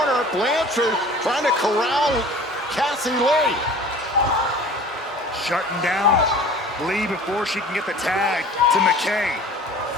Blanchard trying to corral Cassie Lee. Shutting down Lee before she can get the tag to McKay.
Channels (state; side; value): normal; both; correlation 0.44